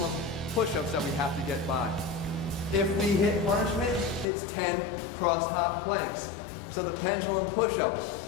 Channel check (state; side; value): drops out; right; at 4.2 s